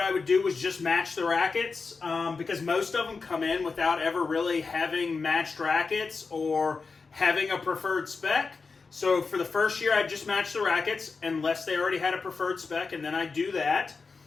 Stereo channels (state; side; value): quieter; right; 4.6 dB